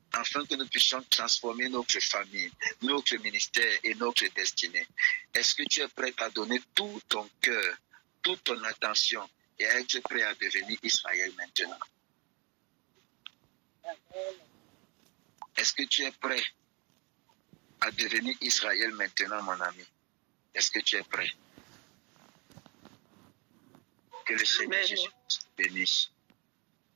afin que nous puissions transformer notre famille, notre ministère et notre destinée. Est-ce que tu es prêt à donner tout ton cœur, toute ton attention et à être prêt à devenir Israël maintenant? Est-ce que tu es prêt à devenir Israël maintenant, mon ami? Est-ce que tu es prêt? Que le Seigneur Jésus bénisse.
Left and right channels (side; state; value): left; quieter; 30.8 dB